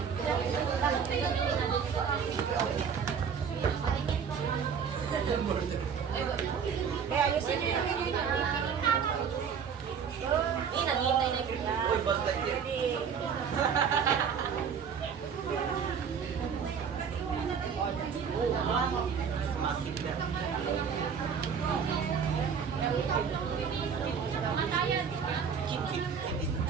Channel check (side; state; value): left; quieter; 6.9 dB